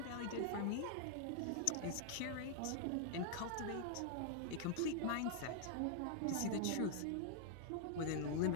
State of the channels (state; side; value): different; both; correlation 0.00